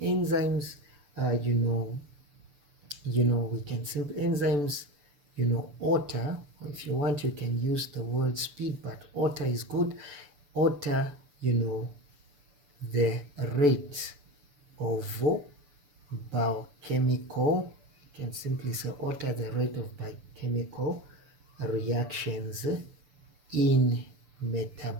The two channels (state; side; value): late; left; 6.8 ms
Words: enzymes, we can simply enzymes, alter. If you want, you can use the word speed, but alter is good. Alter, the rate of biochemical, you can simply say alter the rate of biochemical reactions in